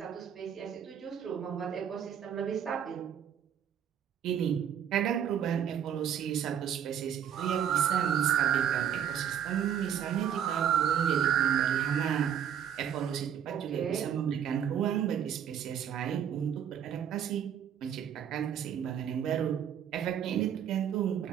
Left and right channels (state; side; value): quieter; left; 9.0 dB